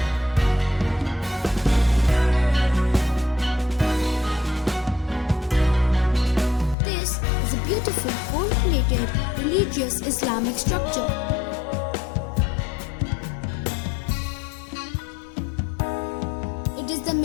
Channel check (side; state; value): right; drops out; at 6.8 s